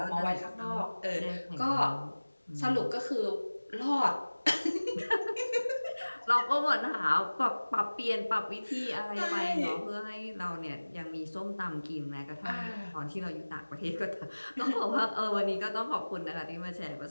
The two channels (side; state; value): both; inverted; correlation -1.00